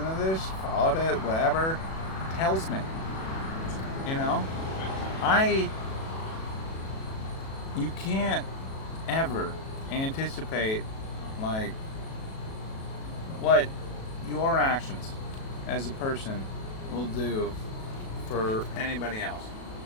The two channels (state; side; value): late; right; 37 ms